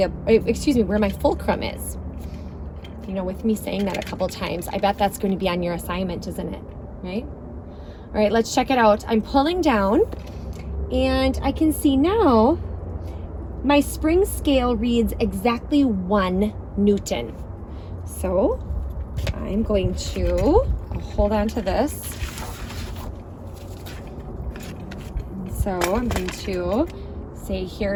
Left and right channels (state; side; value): identical; both; correlation 1.00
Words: my fulcrum is. You know, with me saying that a couple times, I bet that's going to be on your assignment, isn't it? Right? All right, let's check it out. I'm pulling down, and I can see now my spring scale reads exactly 1 Newton. So I'm going to hold on to this. So I'm going to say